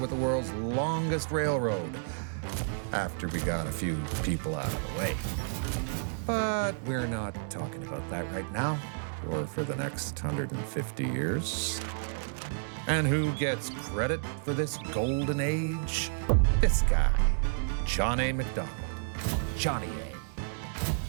the world's longest railroad, after we got a few people out of the way. But we're not talking about that right now, or for the next 150 years. And who gets credit for this golden age? This guy, John A. MacDonald. Johnny A.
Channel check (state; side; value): silent; left; digital silence